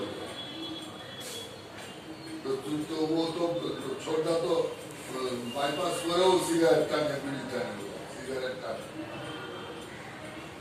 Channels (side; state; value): both; identical; correlation 1.00